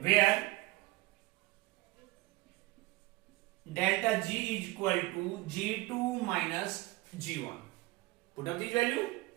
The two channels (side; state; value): left; quieter; 20.8 dB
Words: Where delta G is equal to G2 minus G1, put up this value,